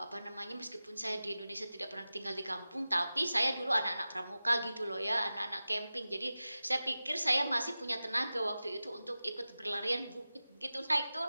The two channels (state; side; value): inverted; both; correlation -0.95